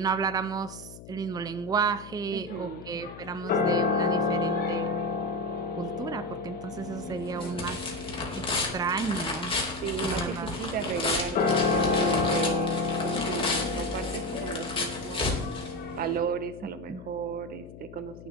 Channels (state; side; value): noise; left; hum, 15 dB below the sound